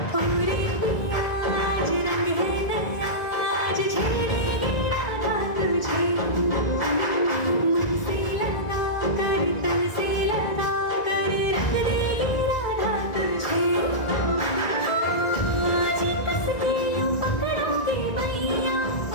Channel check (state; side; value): late; right; 1.9 ms